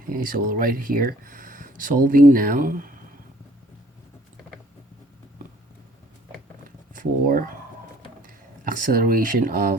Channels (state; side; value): normal; both; correlation 0.57